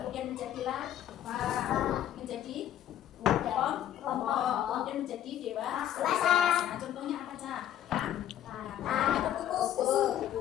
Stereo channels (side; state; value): right; quieter; 11.3 dB